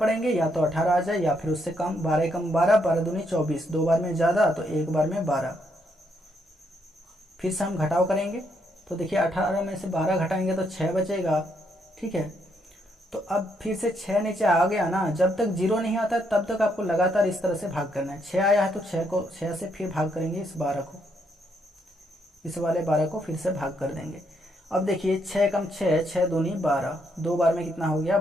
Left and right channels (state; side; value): normal; both; correlation 0.75